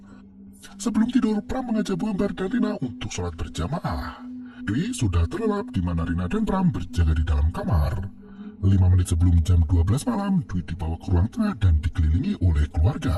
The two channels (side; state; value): both; identical; correlation 1.00